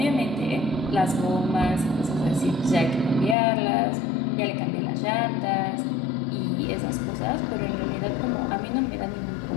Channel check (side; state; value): right; drops out; at 3.4 s